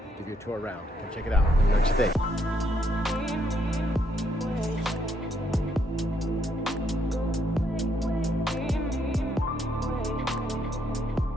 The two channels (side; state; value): both; normal; correlation 0.74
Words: give you a tour around. Come check it out. Let me know what you think.